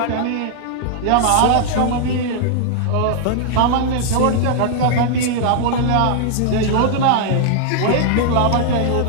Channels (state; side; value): different; both; correlation -0.01